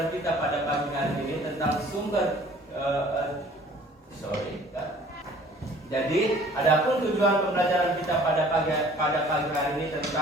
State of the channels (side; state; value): both; normal; correlation 0.52